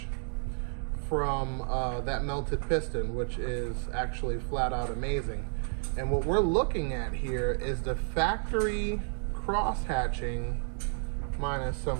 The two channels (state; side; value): silent; left; 57 dB below the other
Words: from that melted piston, which is actually flat out amazing. And what we're looking at here is the factory cross hatching, minus